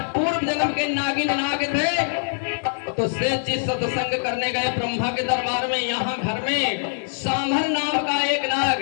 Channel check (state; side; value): silent; right; digital silence